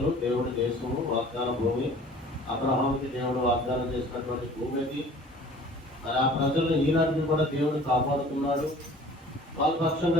దేవుడి దేశము, వాగ్దాన భూమి. అబ్రహాముకి దేవుడు వాగ్దానం చేసినటువంటి భూమి అది. మరి ఆ ప్రజలను ఈనాటికి కూడా దేవుడు కాపాడుతున్నాడు. వాళ్ళ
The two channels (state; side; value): normal; both; correlation 0.48